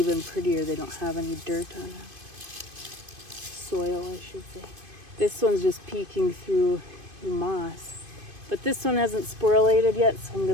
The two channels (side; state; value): left; late; 2.5 ms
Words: prettier. They don't have any dirt on them. Soil, I should say. This one's just peeking through the moss. But this one hasn't sporulated yet, so I'm